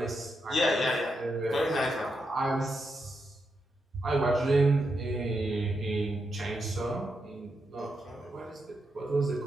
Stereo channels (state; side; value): normal; both; correlation 0.84